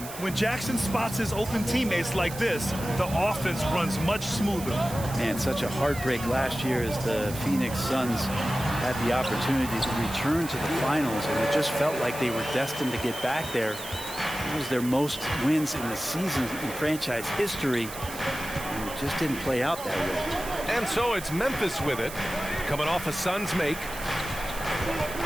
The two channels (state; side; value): noise; right; hiss, 12 dB below the sound